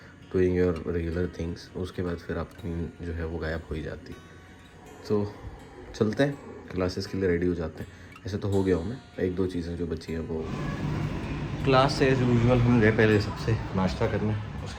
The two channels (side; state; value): both; identical; correlation 1.00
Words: doing your regular things. उसके बाद फिर आपकी नींद जो है वो गायब हो ही जाती। तो चलते हैं, क्लासेस के लिए रेडी हो जाते हैं। ऐसे तो हो गया हूँ मैं, एक दो चीज़ें जो बची हैं वो क्लास से एज यूजुअल हम गए पहले सबसे नाश्ता करने।